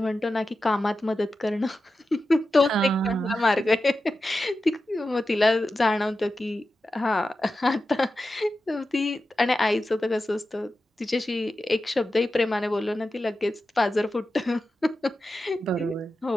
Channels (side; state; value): both; normal; correlation 0.92